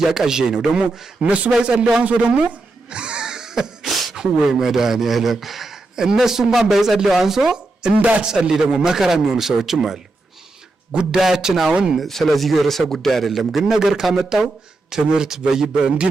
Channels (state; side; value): quieter; left; 3.1 dB